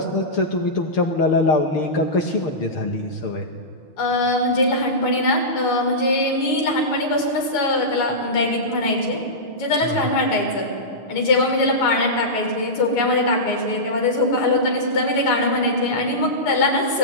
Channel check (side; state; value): right; late; 6.5 ms